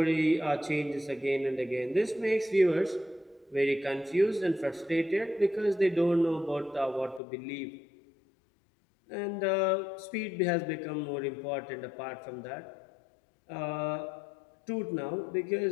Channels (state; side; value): drops out; right; at 7.2 s